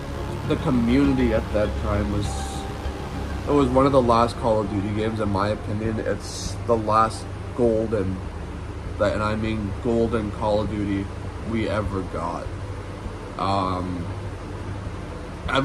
The community at that time was one of the last Call of Duty games, in my opinion. It's the last golden, and I mean golden Call of Duty we ever got.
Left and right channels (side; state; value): both; identical; correlation 1.00